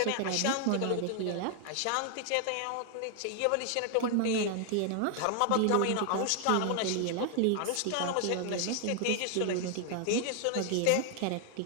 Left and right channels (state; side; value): different; both; correlation 0.00